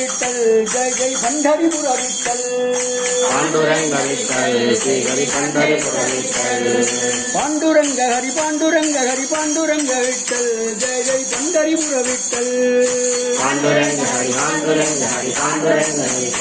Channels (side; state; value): both; identical; correlation 1.00